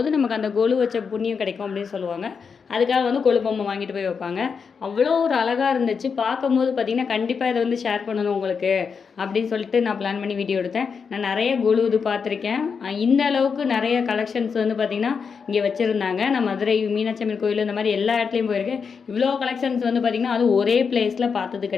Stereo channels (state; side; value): quieter; right; 5.9 dB